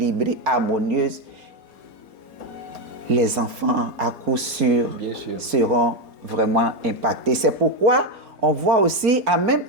harmonieuse, les enfants, à coup sûr, seront vraiment impactés. C'est pourquoi on voit aussi, en même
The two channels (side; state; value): left; late; 4.3 ms